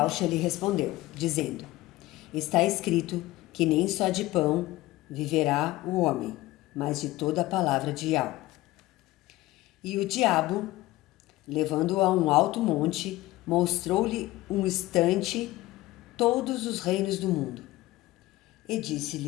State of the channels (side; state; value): right; quieter; 17.8 dB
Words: lhe respondeu, dizendo: Está escrito que nem só de pão viverá o homem, mas de toda a palavra de Al. E o diabo, levando-o a um alto monte, mostrou-lhe um instante todos os reinos do mundo. E